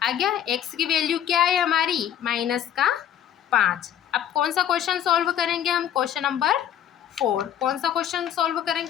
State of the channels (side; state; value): right; quieter; 10.2 dB